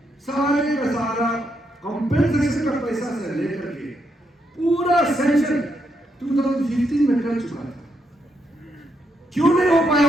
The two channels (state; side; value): normal; both; correlation 0.79